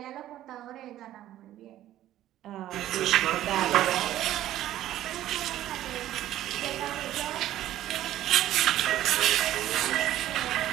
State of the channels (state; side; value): quieter; left; 13.2 dB